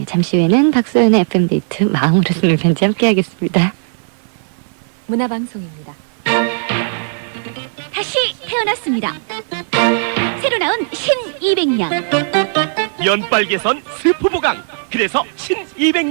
잠시 후에는 박소연의 FM데이트 마음으로 쓰는 편지 함께하겠습니다. 문화방송입니다. 다시 태어났습니다. 새로 나온 신200냥. 연빨개선 스프보강. 그래서 신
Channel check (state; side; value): silent; left; digital silence